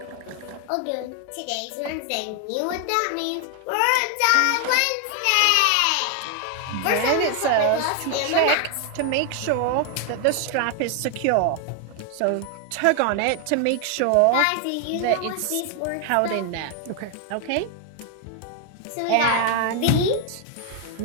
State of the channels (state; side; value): different; both; correlation 0.00